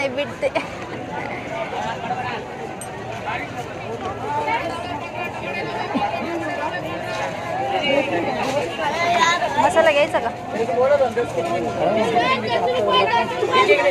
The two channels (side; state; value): both; identical; correlation 1.00